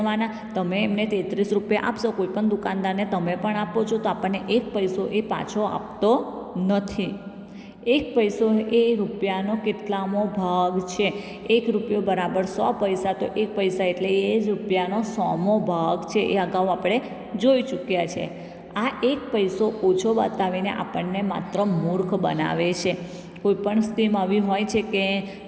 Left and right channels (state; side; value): identical; both; correlation 1.00